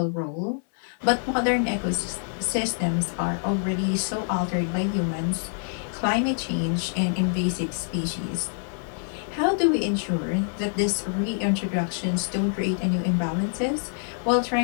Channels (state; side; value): silent; right; 61 dB below the other